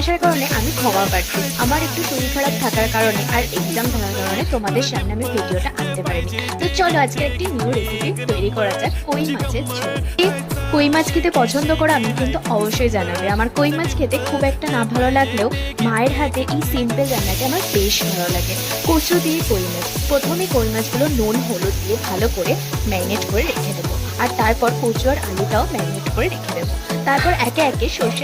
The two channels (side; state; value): both; identical; correlation 1.00